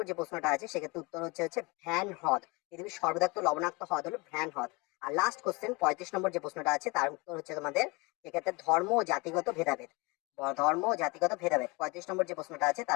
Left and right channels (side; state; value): right; quieter; 26.4 dB